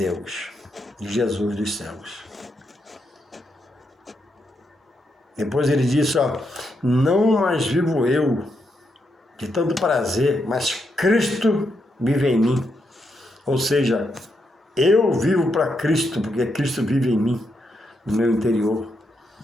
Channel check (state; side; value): normal; both; correlation 0.81